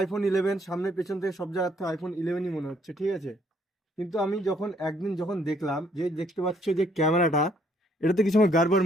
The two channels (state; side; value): normal; both; correlation 0.67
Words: 11, সামনে পেছন থেকে সব জায়গার থেকে আইফোন 11ই মনে হচ্ছে, ঠিক আছে। কিন্তু আমি যখন একদিন দেখলাম, যে দেখতে পাচ্ছ যে ক্যামেরাটা, এটাতে কিছু আমার গাড়বড়